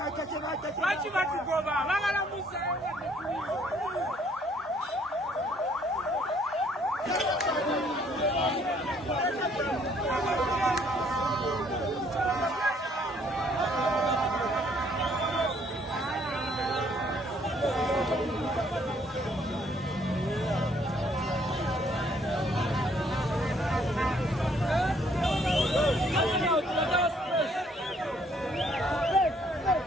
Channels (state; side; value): normal; both; correlation 0.64